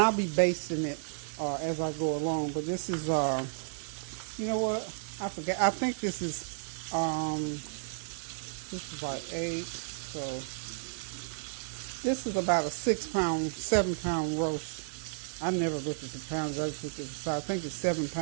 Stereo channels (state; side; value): silent; left; 56 dB below the other